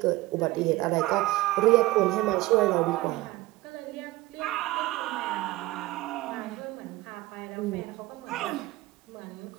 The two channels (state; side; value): quieter; left; 18.8 dB